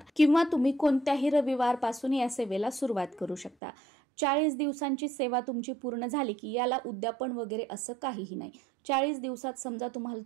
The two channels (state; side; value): drops out; left; at 3.6 s